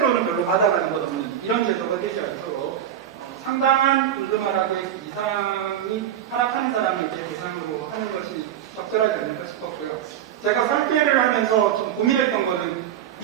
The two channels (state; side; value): quieter; left; 10.2 dB